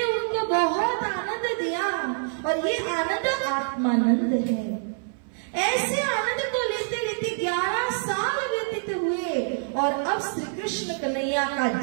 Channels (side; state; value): left; silent; 58 dB below the other